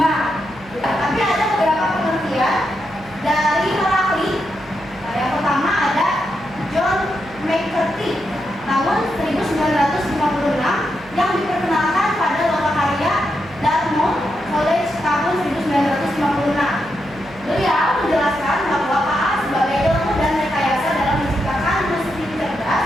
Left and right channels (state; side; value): noise; right; hum, 22 dB below the sound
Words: Tapi ada beberapa pengertian dari Heracli. Nah, yang pertama ada John McCarthy tahun 1956 yang diperkenalkan pada lokakarya Dartmouth College tahun 1956. Beliau menjelaskan bahwa KA sebagai ilmu dan rekayasa dalam menciptakan mesin cerdas,